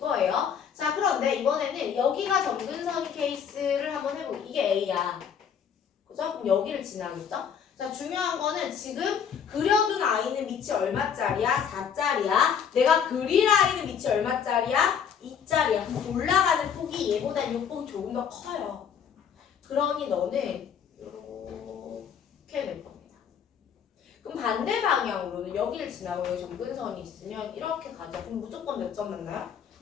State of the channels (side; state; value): right; quieter; 7.6 dB